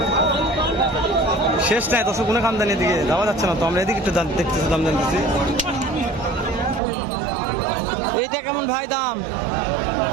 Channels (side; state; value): left; drops out; at 6.8 s